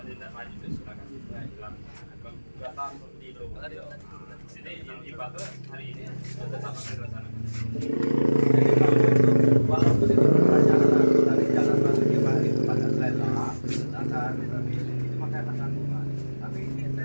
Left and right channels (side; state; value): both; inverted; correlation -1.00